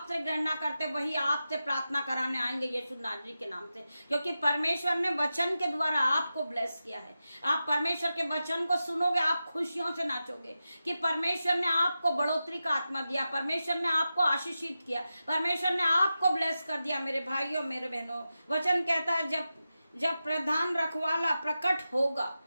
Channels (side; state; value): both; inverted; correlation -0.92